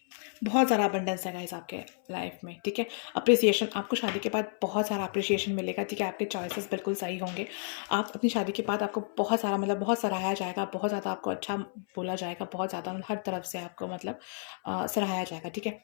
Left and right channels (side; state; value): right; silent; 57 dB below the other